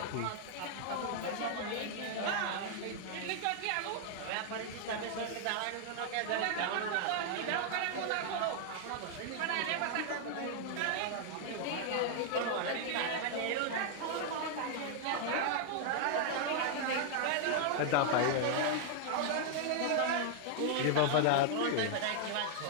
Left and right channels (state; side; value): different; both; correlation 0.00